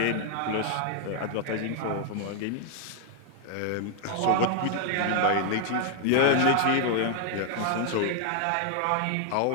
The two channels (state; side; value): different; both; correlation 0.00